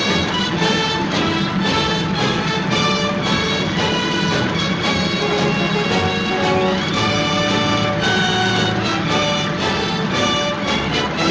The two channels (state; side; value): identical; both; correlation 1.00